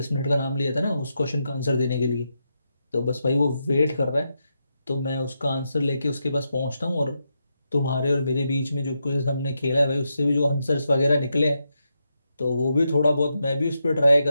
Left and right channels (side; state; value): both; inverted; correlation -0.84